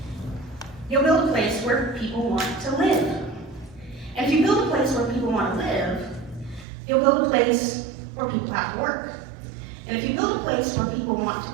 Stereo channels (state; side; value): drops out; left; at 6.7 s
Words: you'll build a place where people want to live. And if you build a place where people want to live, you'll build a place where people have to work. And if you build a place where people want